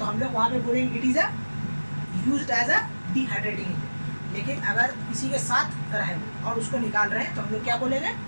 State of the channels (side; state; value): both; inverted; correlation -1.00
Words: हम लोग वहाँ पे बोलेंगे it is a used as a dehydrating agent. लेकिन अगर किसी के साथ रहे और उसको निकाल रहे हैं तो हम लोग क्या बोलेंगे,